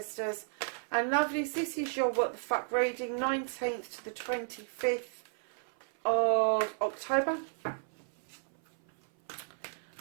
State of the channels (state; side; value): silent; left; 55 dB below the other